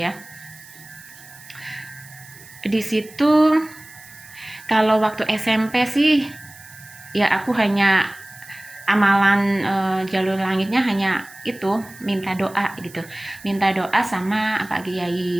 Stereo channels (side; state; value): right; noise; hiss, 21 dB below the sound